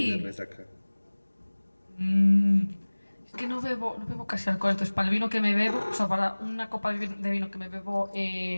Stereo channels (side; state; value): both; inverted; correlation -1.00